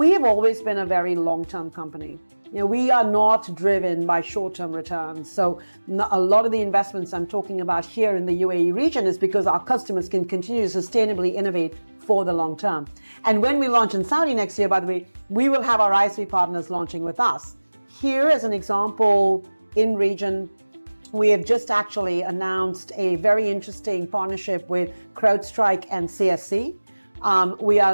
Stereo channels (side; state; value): both; inverted; correlation -1.00